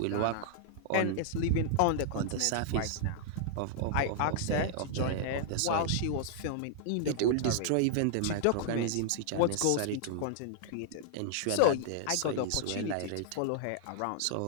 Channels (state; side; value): different; both; correlation -0.01